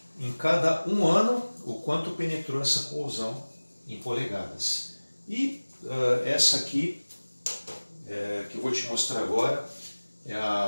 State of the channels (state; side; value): inverted; both; correlation -1.00